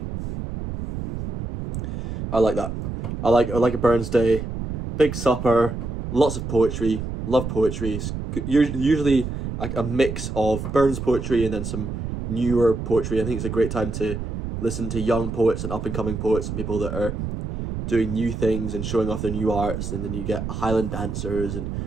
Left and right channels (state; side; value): noise; right; rumble, 5 dB below the sound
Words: I like that. I like a Burns Day, big supper, lots of poetry, love poetry. Usually a mix of Burns poetry and then some newer poetry. I think it's a great time to listen to young poets and up-and-coming poets and people that are doing new things and showing off their new arts, and then you get Highland dancers and